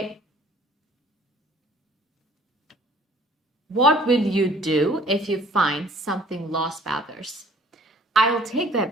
What will you do if you find something lost by others? I'll take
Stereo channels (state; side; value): normal; both; correlation 0.54